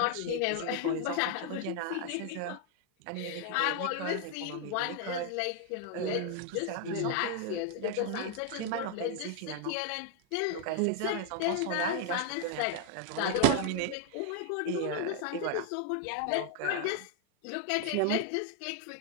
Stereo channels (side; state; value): both; different; correlation 0.00